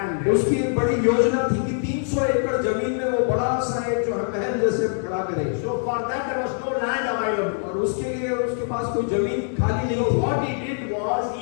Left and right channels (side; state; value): right; silent; 58 dB below the other